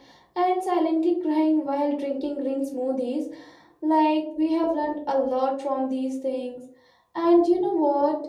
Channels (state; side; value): identical; both; correlation 1.00